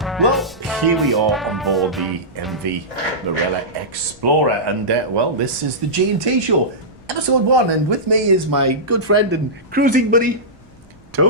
Well, here we are on board the MV Marella Explorer, and well, this is the G&T show, episode 1, and with me is my good friend and cruising buddy,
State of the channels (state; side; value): noise; right; rumble, 29 dB below the sound